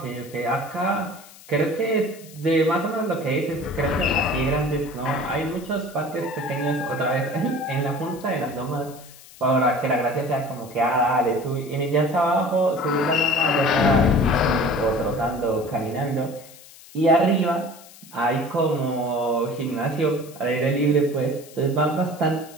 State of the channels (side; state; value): left; noise; hiss, 21 dB below the sound